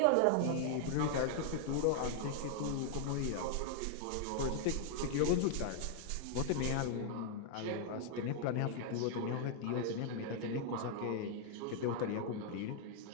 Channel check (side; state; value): both; different; correlation 0.00